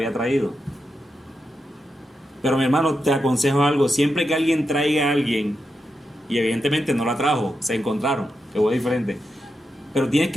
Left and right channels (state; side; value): normal; both; correlation 0.87